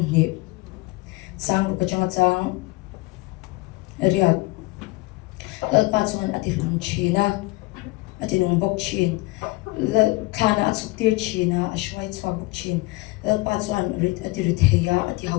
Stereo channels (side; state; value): right; quieter; 22.1 dB